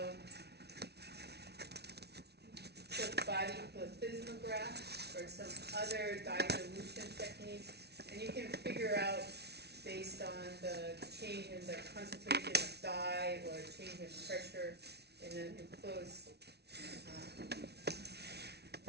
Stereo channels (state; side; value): late; left; 0.49 ms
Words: body plethysmograph or some other dilution techniques, and you can figure out based on the change in the concentration of dye or change in pressure in an enclosed